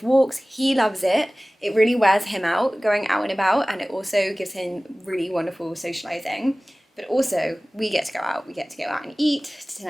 walks. He loves it. It really wears him out going out and about, and it also gives him really wonderful socializing. But also we get to go out. We get to go out and eat to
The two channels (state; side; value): normal; both; correlation 0.98